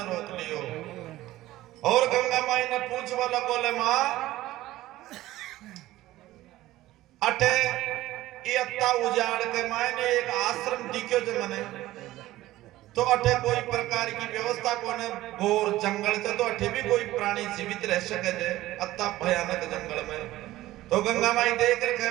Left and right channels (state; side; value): quieter; left; 16.1 dB